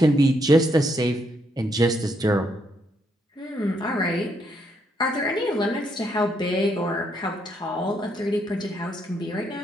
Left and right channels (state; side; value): normal; both; correlation 0.75